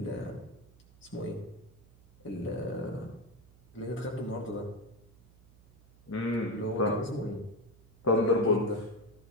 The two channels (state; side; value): noise; right; hum, 25 dB below the sound